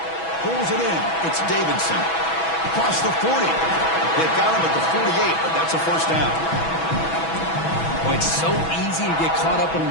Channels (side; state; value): right; late; 6.1 ms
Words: Pulls it in. It's Davidson. Across the 40. They've got him at the 48, but that's a first down. Well, it's so easy to get caught up on